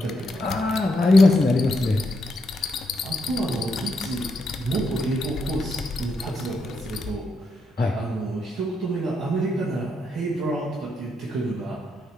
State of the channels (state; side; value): normal; both; correlation 0.80